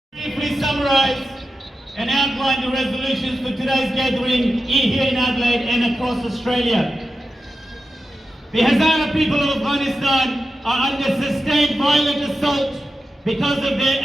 Briefly summarize and outline the resolutions for today's gathering here in Adelaide and across Australia. The Hazara people of Afghanistan are under sustained violent assault because of their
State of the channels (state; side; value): normal; both; correlation 0.91